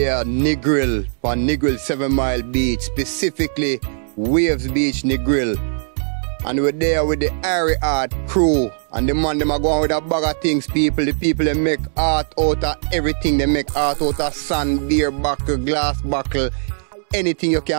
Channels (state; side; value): silent; left; digital silence